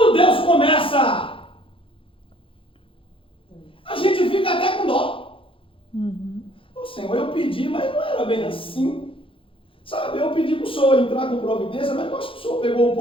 Deus começa, a gente fica até com dó. Ô Senhor, eu pedi, mas não era bem assim. Sabe, eu pedi para o Senhor entrar com providência, mas eu acho que o Senhor pegou um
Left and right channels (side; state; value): right; late; 0.26 ms